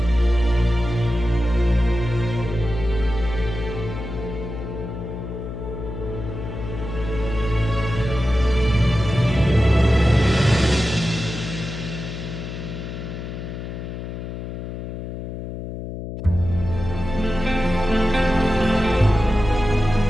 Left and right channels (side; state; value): left; noise; hum, 8 dB below the sound